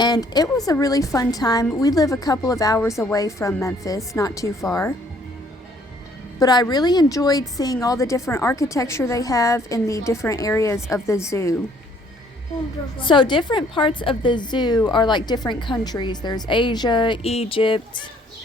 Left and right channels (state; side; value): normal; both; correlation 0.62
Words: it was a really fun time. We live a couple of hours away from Memphis, not too far. But I really enjoyed seeing all the different architecture they have in the different areas of the zoo. So different parts of the zoo are like different countries. There's Asia, Egypt,